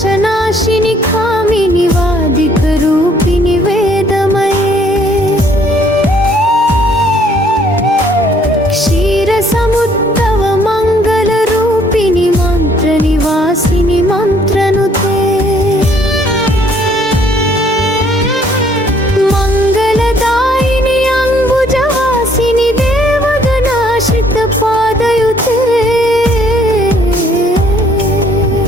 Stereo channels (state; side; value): normal; both; correlation 0.63